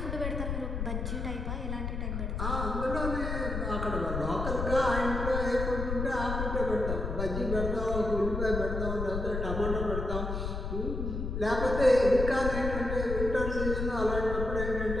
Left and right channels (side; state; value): left; noise; rumble, 3 dB below the sound